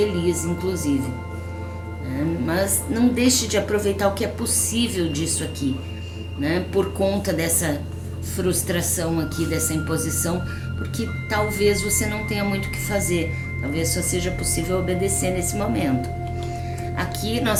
inclusive. Mas não deixe de aproveitar o que é possível disso aqui, né? Por conta dessa frustração aqui, dessa imposição, porque talvez você não tenha muito o que fazer, talvez só seja possível obedecer nesse momento. Aqui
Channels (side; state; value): both; identical; correlation 1.00